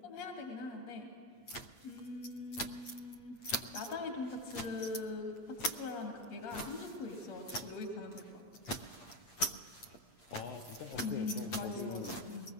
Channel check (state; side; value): late; right; 8.5 ms